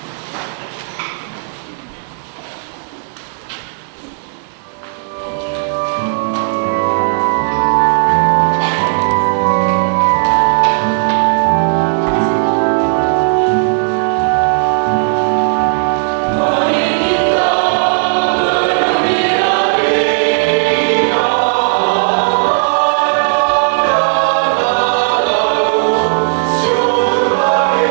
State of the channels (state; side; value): silent; left; digital silence